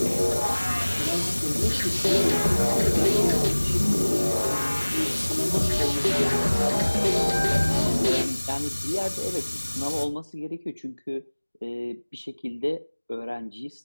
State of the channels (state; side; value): inverted; both; correlation -1.00